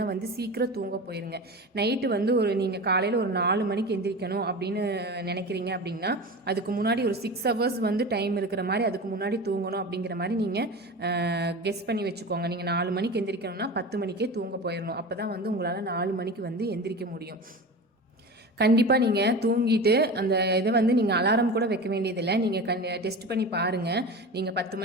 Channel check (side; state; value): both; normal; correlation 0.31